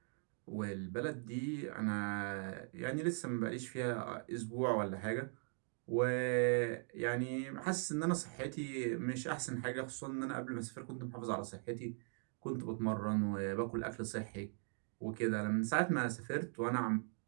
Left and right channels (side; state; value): left; silent; 51 dB below the other